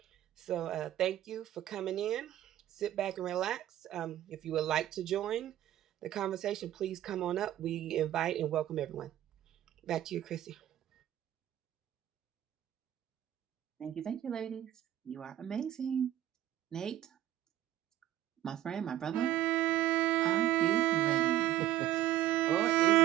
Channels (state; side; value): quieter; left; 13.0 dB